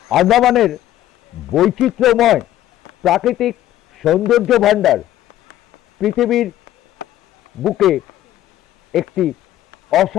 আন্দামানের বৈচিত্র্যময় প্রাকৃতিক সৌন্দর্য ভাণ্ডার পৃথিবীর বুকে একটি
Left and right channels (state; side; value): quieter; right; 13.3 dB